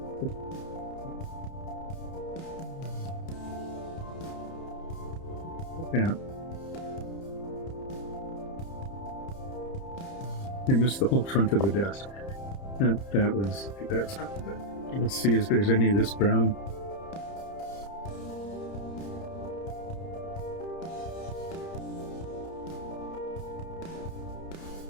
Yeah. I missed the whole front of the desk. That's not good. Let's see if there's any of this brown.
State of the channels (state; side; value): late; right; 30 ms